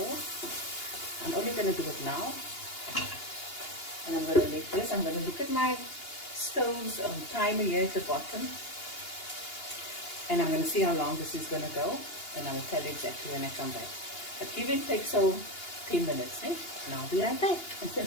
I'm only going to do it now. And I'm going to let this, I'm going to look at my stove's timer here at the bottom. And I'm going to see how long this is going to go. And I will tell you exactly when I come back. But give and take, so 10 minutes, eh? And I'll be right back.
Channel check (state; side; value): late; right; 2.8 ms